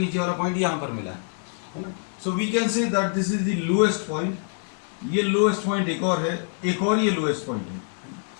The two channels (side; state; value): right; silent; 57 dB below the other